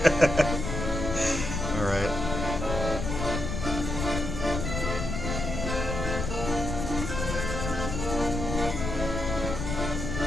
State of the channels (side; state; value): left; noise; rumble, 4 dB below the sound